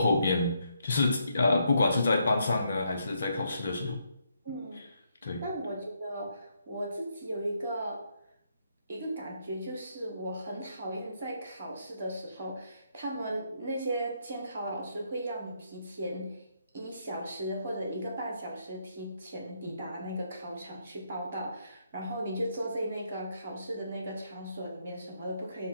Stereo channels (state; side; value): inverted; both; correlation -0.75